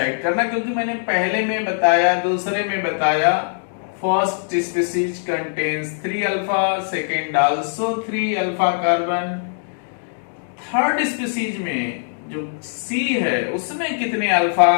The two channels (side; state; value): right; silent; digital silence